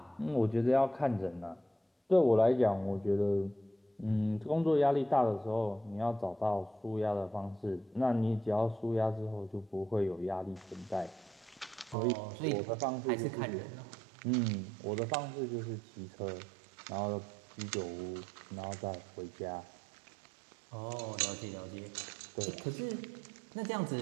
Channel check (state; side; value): drops out; left; at 12.0 s